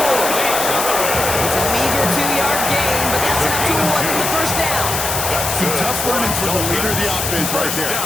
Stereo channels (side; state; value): left; noise; hiss, 2 dB below the sound